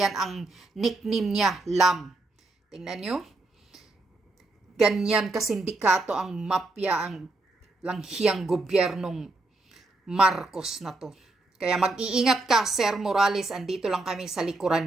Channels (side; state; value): left; quieter; 3.1 dB